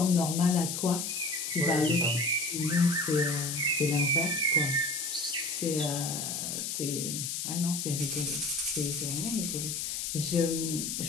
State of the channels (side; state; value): left; noise; hiss, 3 dB below the sound